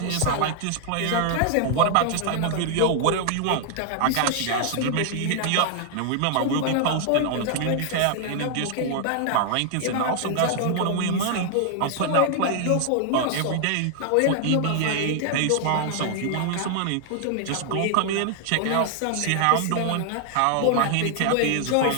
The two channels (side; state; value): both; different; correlation 0.00